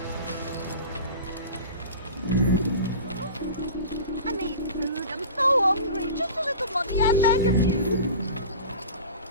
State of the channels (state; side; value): inverted; both; correlation -0.35